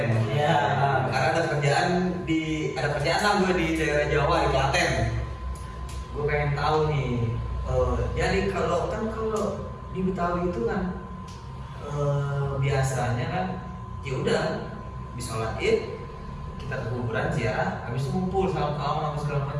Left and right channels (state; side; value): identical; both; correlation 1.00